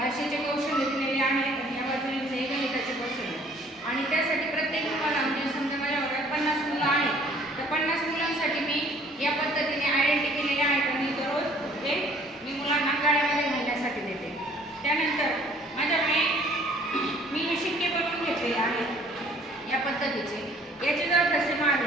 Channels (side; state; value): both; normal; correlation 0.56